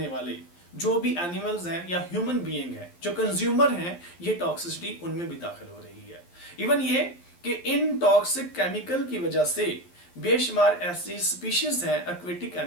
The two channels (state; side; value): late; right; 11 ms